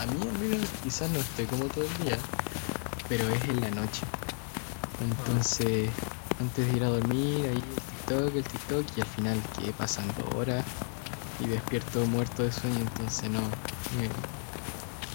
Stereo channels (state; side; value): silent; right; 56 dB below the other